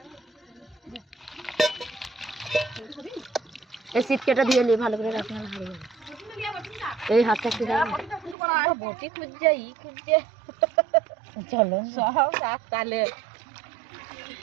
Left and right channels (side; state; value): left; drops out; at 8.3 s